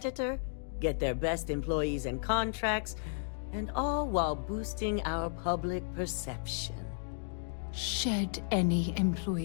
get their best employees and contracts, and all while boosting our public perception. Shed any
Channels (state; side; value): silent; right; digital silence